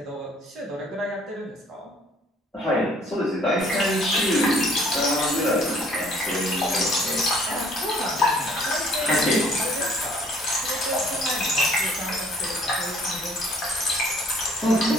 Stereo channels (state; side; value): normal; both; correlation 0.58